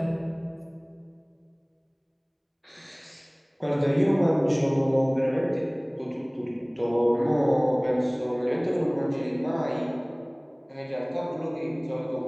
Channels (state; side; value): identical; both; correlation 1.00